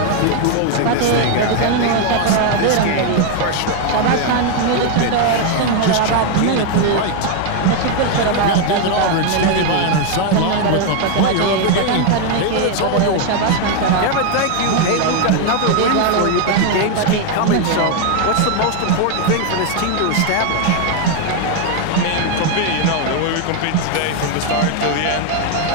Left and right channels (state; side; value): different; both; correlation 0.01